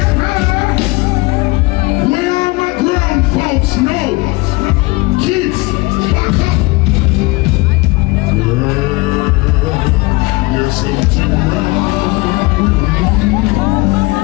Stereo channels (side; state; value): right; quieter; 23.5 dB